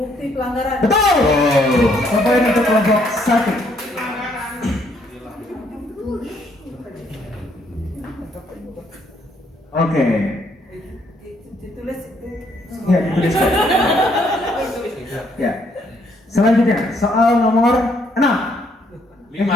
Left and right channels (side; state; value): both; normal; correlation 0.69